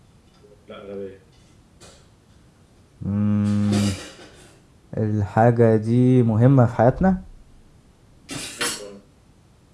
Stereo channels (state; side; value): identical; both; correlation 1.00